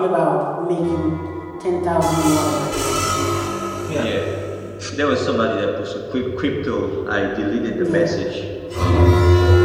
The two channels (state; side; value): identical; both; correlation 1.00